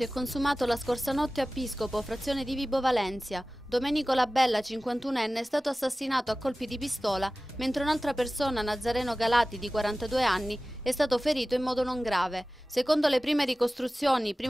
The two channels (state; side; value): normal; both; correlation 0.97